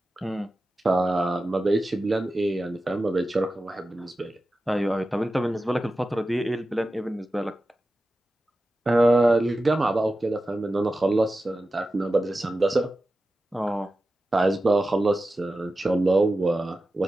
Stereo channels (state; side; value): normal; both; correlation 0.93